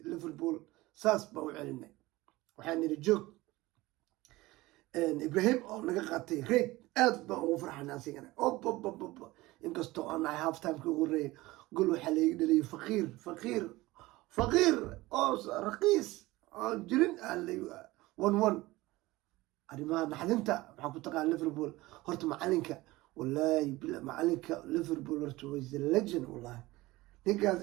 liverpool saas baa u celinay waxaan nidhi joog ibrahim oo naga qaatay reed aad baan ugu farxana asigana ob inkastoo aan nahay half timeka ugu horeeyay gol waxaa layga dhaliyay faqiir oo raqiis oon jirin one arrimaha naxdinta waxaa ku taqaan liverpool horta macalinka wallaahi macalinka liverpool horta was the legend wallahi ninkaas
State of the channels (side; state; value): left; quieter; 19.6 dB